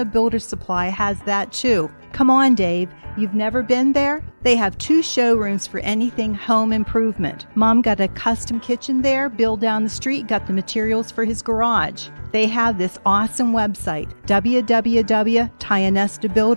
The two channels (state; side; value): inverted; both; correlation -1.00